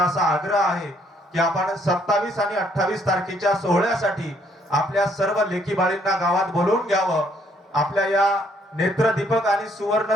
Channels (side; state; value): both; normal; correlation 0.67